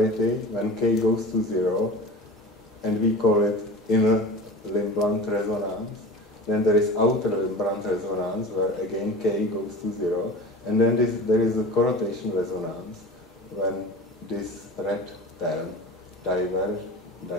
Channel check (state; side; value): normal; both; correlation 0.35